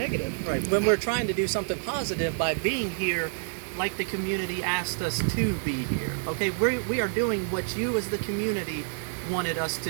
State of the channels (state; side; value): silent; left; digital silence